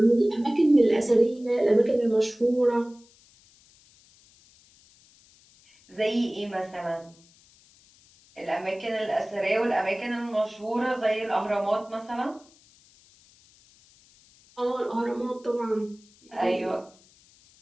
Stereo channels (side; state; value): left; noise; hiss, 29 dB below the sound